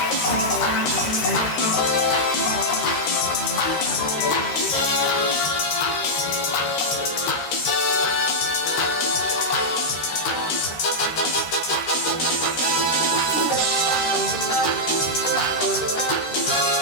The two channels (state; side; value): late; right; 13 ms